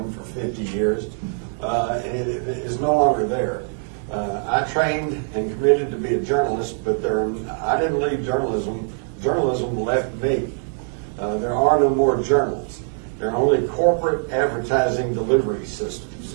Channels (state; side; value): silent; left; 64 dB below the other